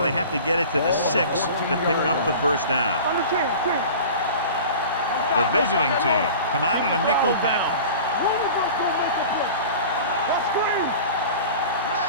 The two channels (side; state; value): both; inverted; correlation -0.39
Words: they have to get it to the 6 to pick up the 1st down. The visiting team come out in a nickel package.